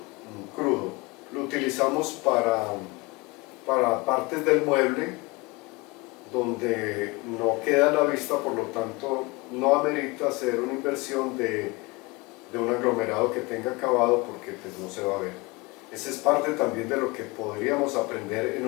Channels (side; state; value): right; quieter; 25.3 dB